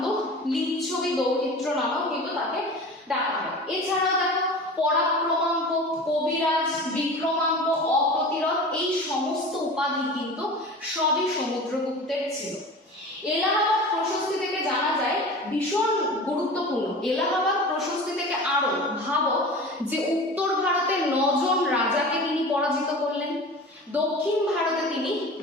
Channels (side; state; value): both; normal; correlation 0.36